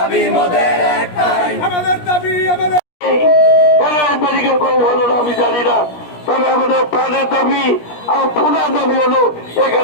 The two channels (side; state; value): right; late; 17 ms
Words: মোদের একটাই আমাদের দাবি আমাদের মেডিকেল কলেজ হলো না আমি জানি না, তবে আমাদের প্রাণের দাবি আর পুনার দাবি হলো